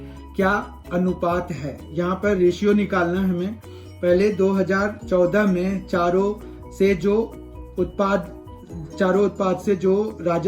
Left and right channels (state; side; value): identical; both; correlation 1.00